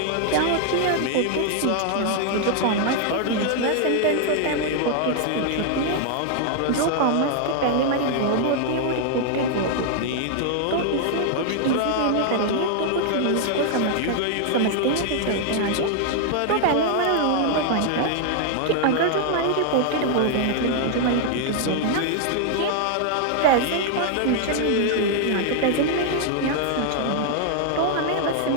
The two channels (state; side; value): different; both; correlation 0.00